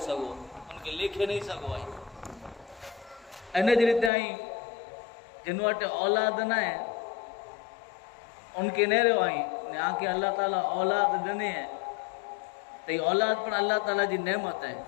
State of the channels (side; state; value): right; drops out; at 4.1 s